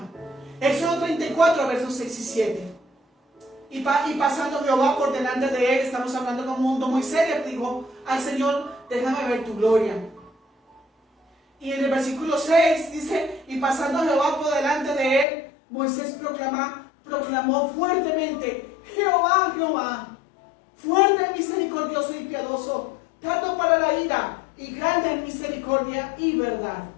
Éxodo 34, versos 6 y 7. Y pasando Jehová por delante de él, estamos hablando como un mundo Moisés le dijo al Señor, déjame ver tu gloria. Y en el versículo 6 dice, y pasando Jehová por delante de él, Moisés proclamó fuertemente, Jehová, Jehová, fuerte, misericordioso y piadoso, tardo para la ira y grande en misericordia y verdad.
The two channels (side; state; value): right; drops out; at 15.2 s